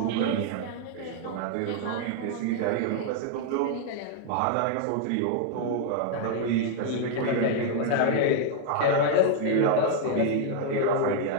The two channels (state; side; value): different; both; correlation 0.00